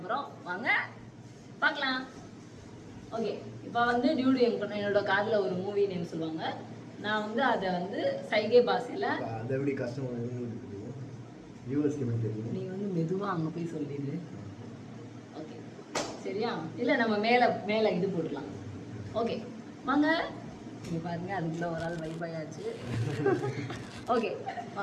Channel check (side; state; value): both; identical; correlation 1.00